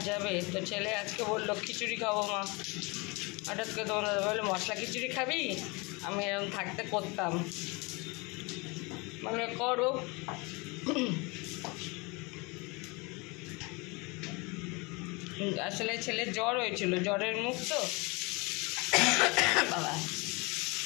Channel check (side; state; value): right; quieter; 27.5 dB